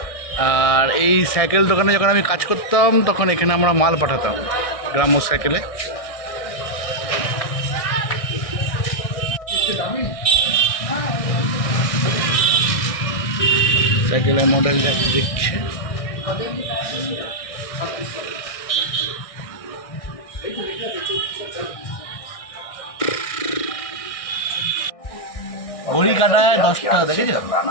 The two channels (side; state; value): right; late; 1.6 ms